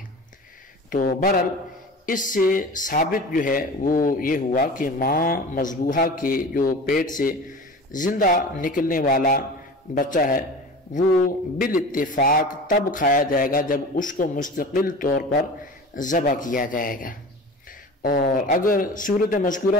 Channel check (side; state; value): both; normal; correlation 0.36